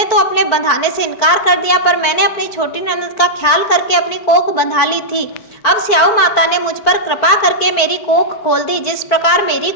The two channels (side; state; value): right; late; 4.5 ms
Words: तो अपने बंधाने से इनकार कर दिया, पर मैंने अपनी छोटी ननद का ख्याल करके अपनी कोख बंधा ली थी। अब स्याऊ माता ने मुझ पर कृपा करके मेरी कोख खोल दी। जिस प्रकार मेरी